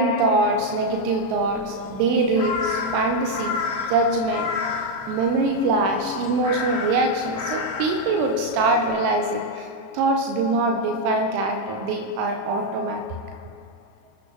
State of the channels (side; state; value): left; late; 36 ms